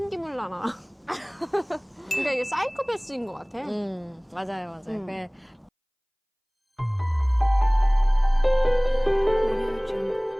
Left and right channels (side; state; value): both; identical; correlation 1.00